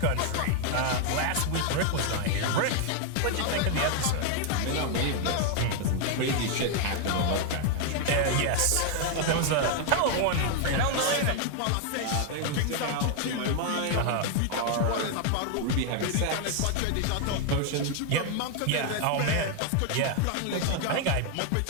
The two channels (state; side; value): different; both; correlation 0.00